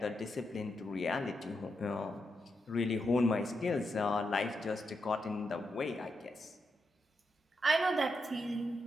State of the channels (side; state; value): both; normal; correlation 0.84